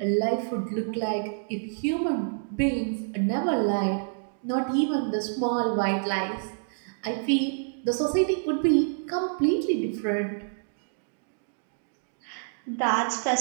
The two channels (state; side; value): silent; left; digital silence